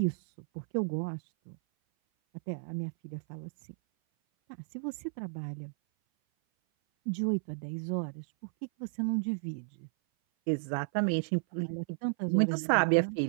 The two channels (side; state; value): left; silent; 56 dB below the other